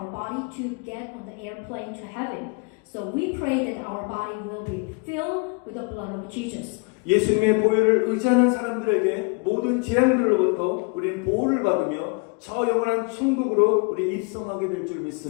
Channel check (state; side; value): quieter; right; 32.0 dB